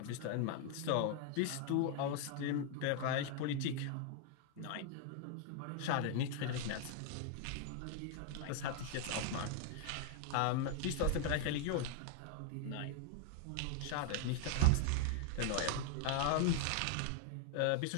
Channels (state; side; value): different; both; correlation 0.00